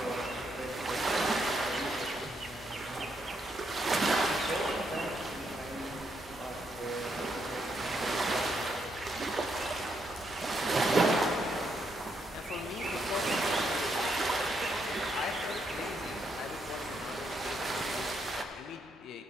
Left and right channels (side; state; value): both; normal; correlation 0.78